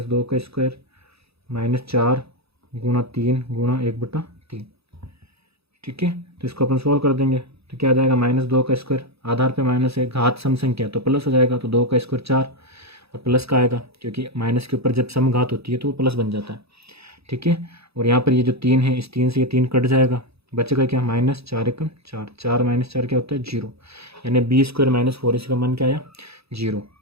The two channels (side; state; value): left; late; 0.78 ms